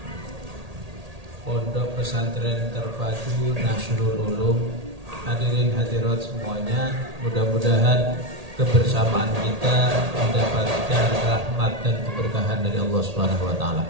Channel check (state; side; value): late; left; 1.8 ms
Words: pondok pesantren terpadu Nasrul Ulum, hadirin hadirat semuanya, mudah-mudahan kebersamaan kita mendapatkan rahmat dan keberkahan dari Allah Subhanahu wa taala.